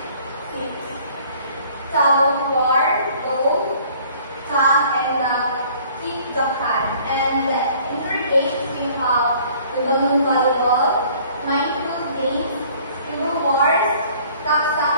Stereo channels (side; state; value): both; inverted; correlation -0.55